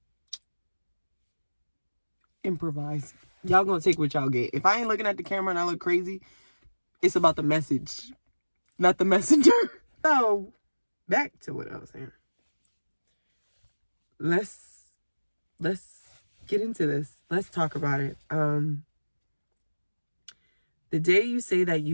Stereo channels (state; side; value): inverted; both; correlation -1.00